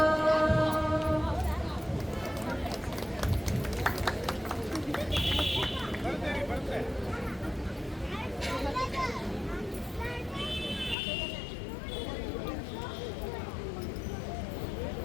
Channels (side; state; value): right; drops out; at 11.0 s